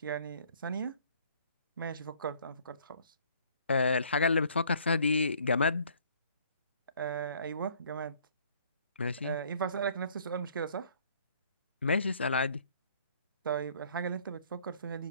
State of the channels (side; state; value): both; inverted; correlation -0.59